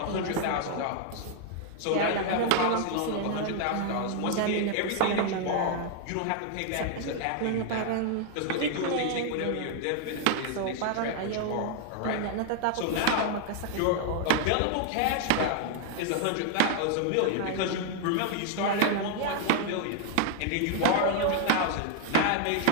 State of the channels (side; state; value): both; different; correlation 0.00